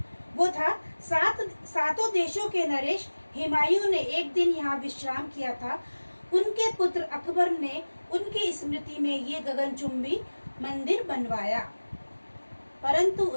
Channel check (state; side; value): inverted; both; correlation -1.00